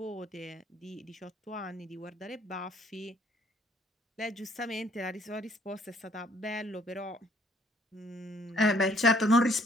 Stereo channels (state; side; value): normal; both; correlation 0.63